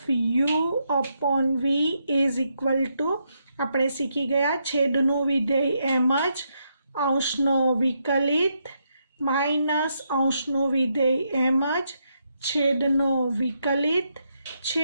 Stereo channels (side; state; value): both; inverted; correlation -0.80